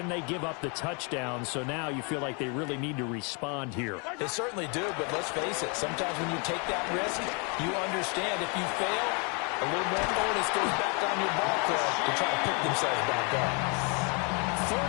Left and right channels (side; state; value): right; quieter; 34.3 dB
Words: they give up the touchdown. So now you feel like they really need to respond here. They certainly do, but let's face it. Sometimes when you take that risk, you understand if you fail, a little more onus goes back on your ball club to try to pick themselves back up.